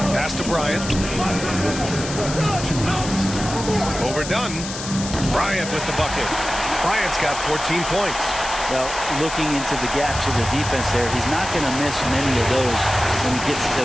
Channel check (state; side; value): noise; left; hiss, 9 dB below the sound